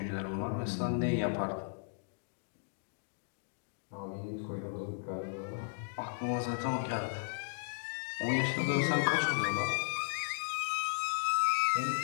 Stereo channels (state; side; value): silent; right; digital silence